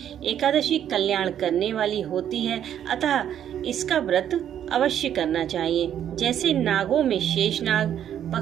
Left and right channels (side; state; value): left; quieter; 10.0 dB